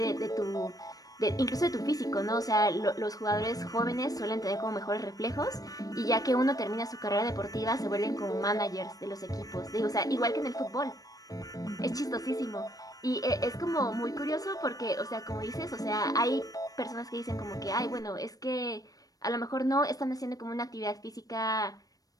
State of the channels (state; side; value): late; right; 0.18 ms